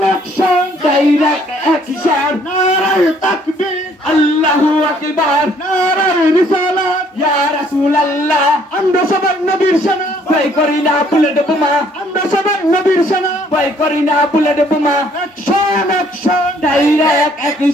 ডাইরেক্ট অ্যাকশন নারায়ে তাকবীর আল্লাহু আকবার নারায়ে রিসালাত ইয়া রাসূলুল্লাহ আমরা সবাই নবীর সেনা ভয় করি না বুলেট বোমা আমরা সবাই নবীর সেনা ভয় করি না বুলেট বোমা অ্যাকশন ডাইরেক্ট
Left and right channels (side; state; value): both; normal; correlation 0.63